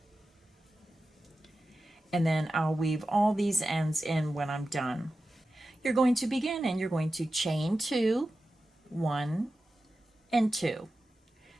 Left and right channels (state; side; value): normal; both; correlation 0.92